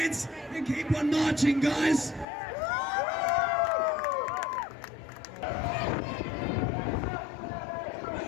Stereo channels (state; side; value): drops out; right; at 2.2 s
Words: and keep on marching, guys.